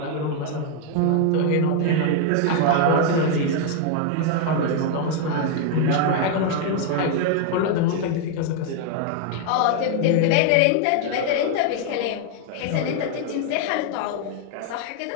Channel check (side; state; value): both; different; correlation 0.00